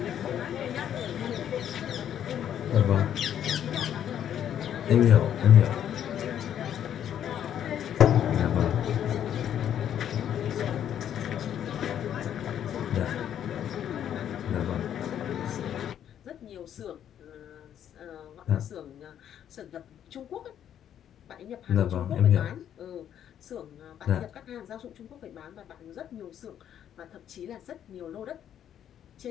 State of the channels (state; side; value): quieter; right; 9.9 dB